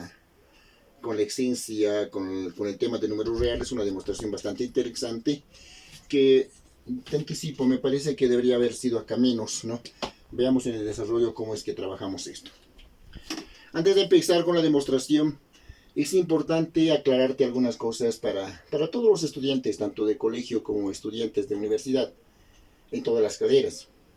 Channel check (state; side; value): identical; both; correlation 1.00